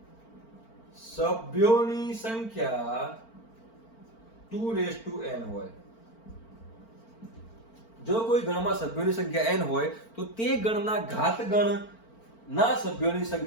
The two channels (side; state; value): right; late; 4.4 ms